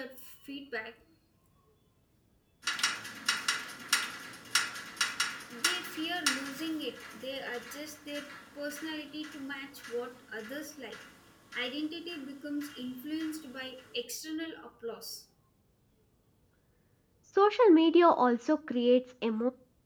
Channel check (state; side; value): identical; both; correlation 1.00